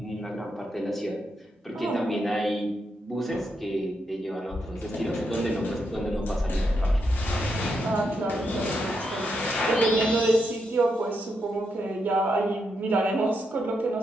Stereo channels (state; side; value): normal; both; correlation 0.82